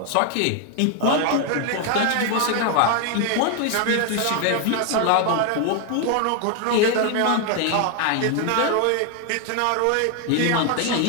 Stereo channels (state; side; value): different; both; correlation 0.01